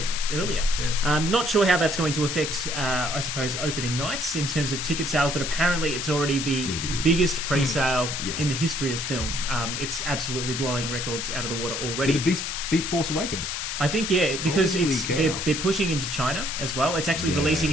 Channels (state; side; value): noise; left; hiss, 3 dB below the sound